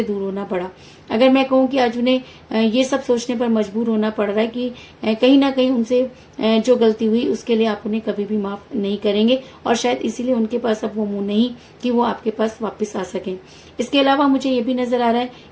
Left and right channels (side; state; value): both; identical; correlation 1.00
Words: दूर होना पड़ा। अगर मैं कहूँ कि आज उन्हें ये सब सोचने पर मजबूर होना पड़ रहा है कि कहीं ना कहीं उनसे जो गलती हुई उसके लिए आप उन्हें कभी भी माफ नहीं करेंगे और शायद इसीलिए उनके पास अब वो मुंह नहीं कि वो आपके पास वापस आ सकें। इसके अलावा मुझे ये भी नजर आ रहा है